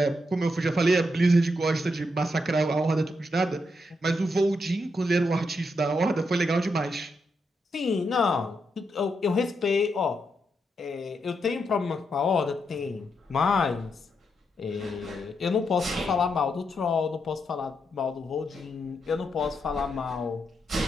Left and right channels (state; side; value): normal; both; correlation 0.82